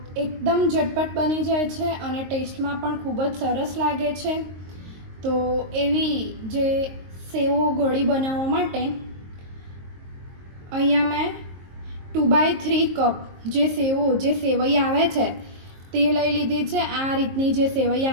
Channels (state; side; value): late; left; 22 ms